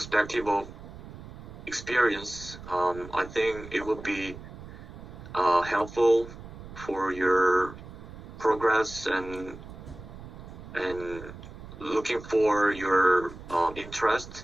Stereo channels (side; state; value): right; noise; rumble, 14 dB below the sound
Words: of experience, I think it would be helpful for your progress and looking for your